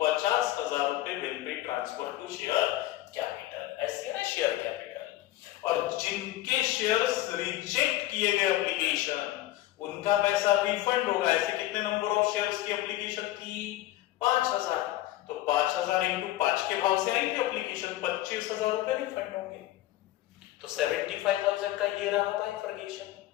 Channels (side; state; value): right; quieter; 15.5 dB